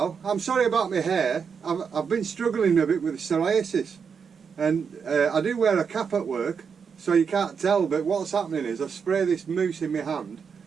I'm sorry about my hair. I've been struggling a bit with psoriasis, and I do wear a cap at work so you can't tell, but what's happening is I spray this mousse in my hand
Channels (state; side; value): quieter; left; 6.3 dB